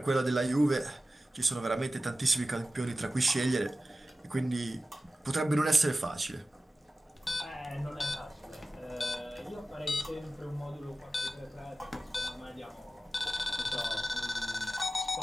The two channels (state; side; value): normal; both; correlation 0.95